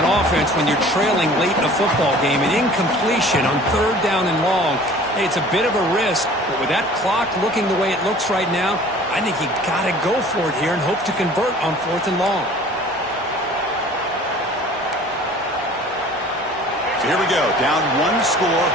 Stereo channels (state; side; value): normal; both; correlation 0.47